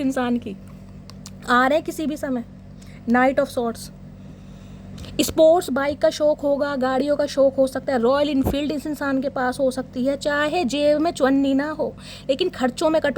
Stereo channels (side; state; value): both; identical; correlation 1.00